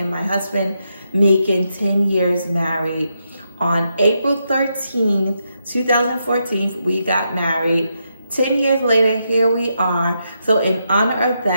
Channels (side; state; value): both; inverted; correlation -0.82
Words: my husband making 10 years married. On April 13th, 2014, we got married. 10 years later, here we are. So in honor of